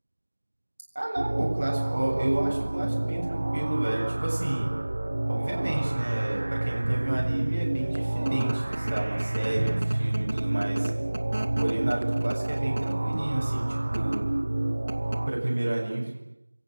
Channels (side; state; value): both; inverted; correlation -1.00